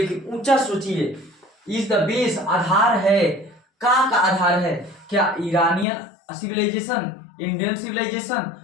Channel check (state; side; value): drops out; right; at 5.9 s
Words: ऊंचा सोचिए, इज द बेस आधार है, का आधार है, क्या Iranian civilization, Indian civilization,